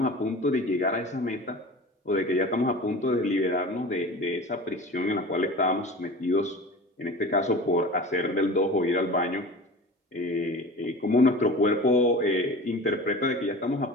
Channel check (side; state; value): both; normal; correlation 0.36